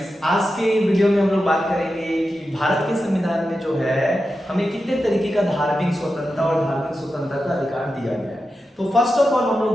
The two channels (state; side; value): normal; both; correlation 0.90